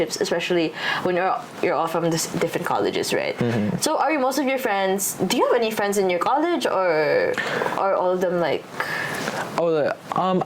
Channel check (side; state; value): both; identical; correlation 1.00